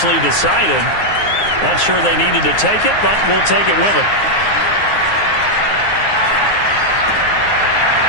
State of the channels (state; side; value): late; right; 9.6 ms